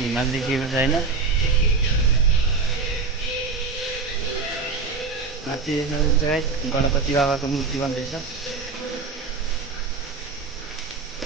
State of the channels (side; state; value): left; quieter; 4.3 dB